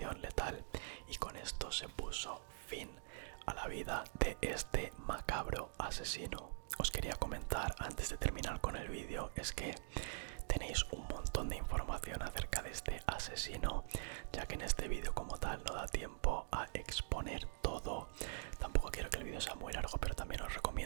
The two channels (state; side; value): silent; left; digital silence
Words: letal, y con esto se puso fin a la vida de este macabro asesino. Os quería comentar antes de terminar con el vídeo, es que tenéis un montón de información acerca de este asesino, ya que en este vídeo como tal no da tiempo a exponer todo. Tampoco quiero que el vídeo sea muy largo, pero también os